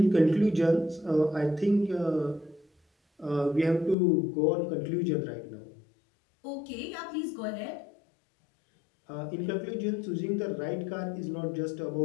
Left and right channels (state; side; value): drops out; right; at 4.0 s